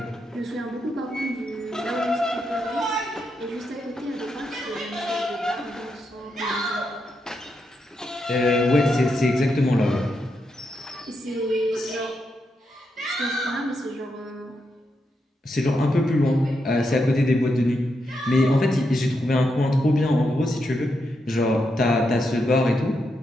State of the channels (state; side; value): normal; both; correlation 0.83